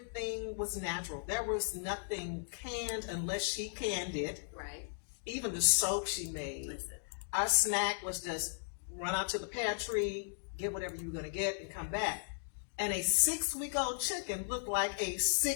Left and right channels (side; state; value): right; silent; digital silence